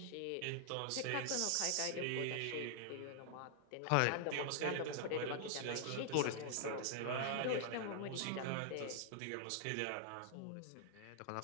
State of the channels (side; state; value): both; different; correlation 0.00